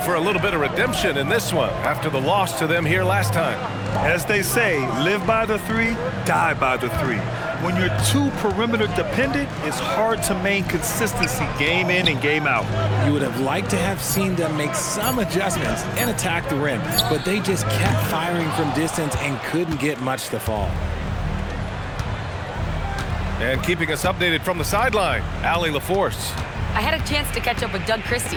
a little bit of redemption in this one after the loss to them here last time. As they say, live by the 3, die by the 3. When you're too perimeter dependent, it's hard to maintain consistency game in and game out. You would have liked to have seen them make some adjustments and attack the rim, but they just kept firing from distance and couldn't get much to fall. And keeping us updated from the sideline, Allie LaForce. I had a chance to catch up with Doug Christie.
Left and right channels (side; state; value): both; identical; correlation 1.00